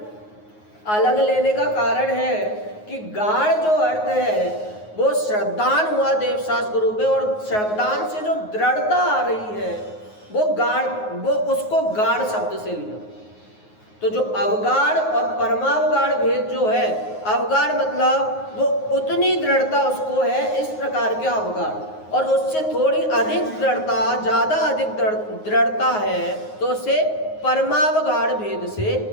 अलग लेने का कारण है कि गाढ़ जो अर्थ है वो श्रद्धान हुआ देवशास्त्र रूप है और श्रद्धान से जो दृढ़ता आ रही है वो गाढ़, वो उसको गाढ़ शब्द से लिया। तो जो अवगाढ़ और परमावगाढ़ भेद जो है, अवगाढ़ मतलब वो उतनी दृढ़ता उसको है इस प्रकार के अवगाढ़, और उससे थोड़ी अधिक दृढ़ता, ज़्यादा अधिक दृढ़ता है तो उसे परमावगाढ़ भेद से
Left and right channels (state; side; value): late; right; 9.5 ms